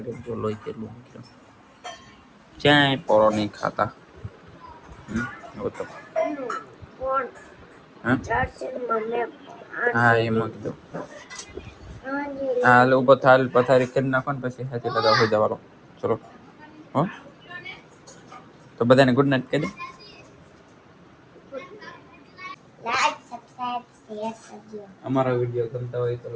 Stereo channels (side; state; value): both; identical; correlation 1.00